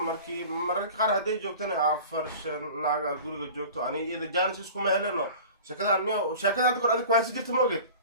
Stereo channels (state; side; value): inverted; both; correlation -0.40